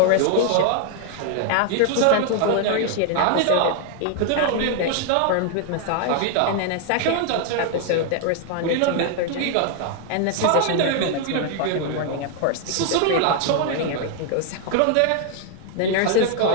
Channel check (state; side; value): different; both; correlation 0.00